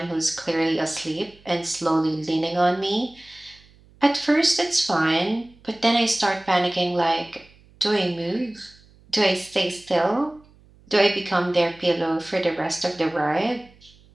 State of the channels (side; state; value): right; noise; hum, 28 dB below the sound